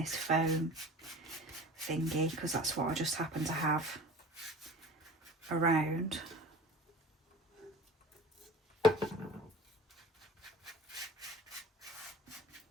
foam thingy because that's what I just happen to have around.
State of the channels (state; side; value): normal; both; correlation 0.40